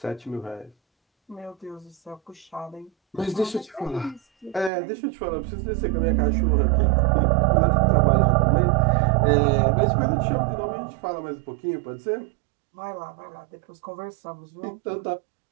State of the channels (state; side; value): drops out; left; at 4.7 s